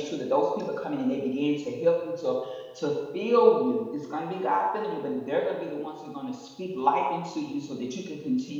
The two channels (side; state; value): both; identical; correlation 1.00